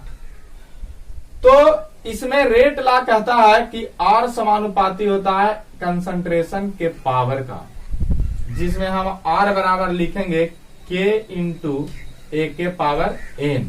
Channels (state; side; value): identical; both; correlation 1.00